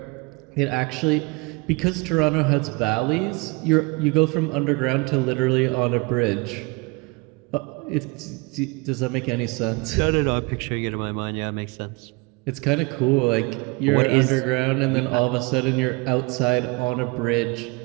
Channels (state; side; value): quieter; left; 27.2 dB